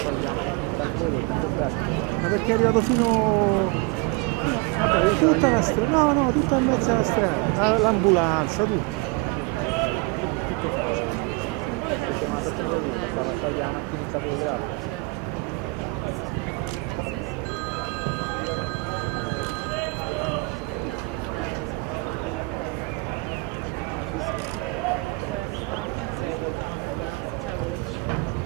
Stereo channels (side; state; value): left; quieter; 27.1 dB